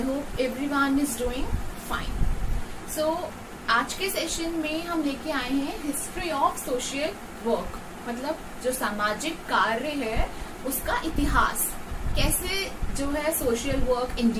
hope everyone is doing fine. So आज के सेशन में हम लेके आए हैं हिस्ट्री ऑफ सोशल वर्क, मतलब जो सामाजिक कार्य है उसका इतिहास, कैसे जो है सोशल वर्क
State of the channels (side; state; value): both; identical; correlation 1.00